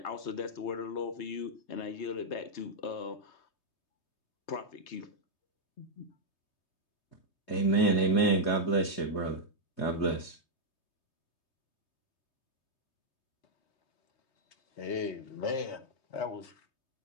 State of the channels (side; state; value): right; late; 3.2 ms